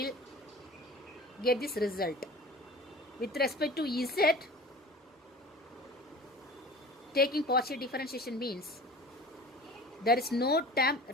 get this result. With respect to Z, taking partial differentiation means there is no term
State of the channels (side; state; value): both; normal; correlation 0.40